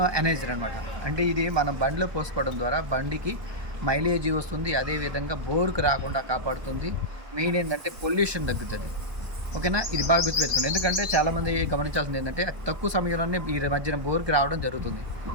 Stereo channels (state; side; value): late; left; 1.2 ms